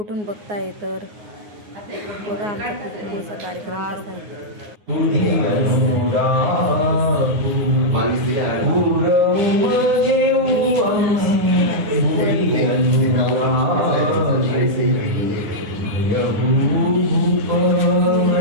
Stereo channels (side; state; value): left; late; 9.6 ms